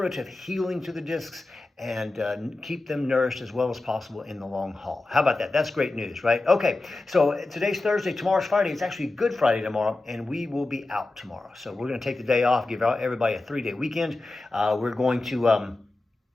healing to the discs and keep them nourished as well as possible in the long haul. How about that? That's great news, right? Okay, so today's Thursday, tomorrow's Friday. It's actually Good Friday tomorrow, and we will be out tomorrow. So we're going to take the day off, give everybody a 3-day weekend. We're going to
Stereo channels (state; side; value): quieter; right; 3.1 dB